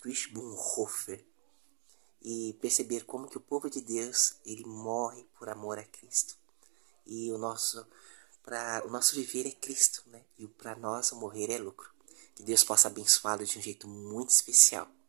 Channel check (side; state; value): left; silent; 54 dB below the other